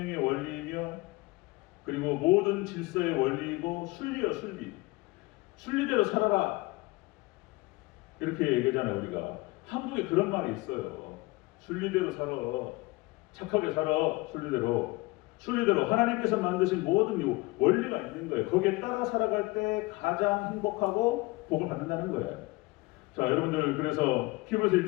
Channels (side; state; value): right; quieter; 22.9 dB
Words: 원리이며 그리고 모든 질서의 원리이고 순리요 순리. 순리대로 살아라. 이렇게 얘기하잖아요. 우리가 한국에 그런 말이 있어요. 순리대로 살아. 착하게 살아. 순리대로 하나님께서 만드신 모든 원리가 있는 거예요. 거기에 따라 살아갈 때 가장 행복하고 복을 받는다는 거예요. 자, 여러분들, 그래서 히브리서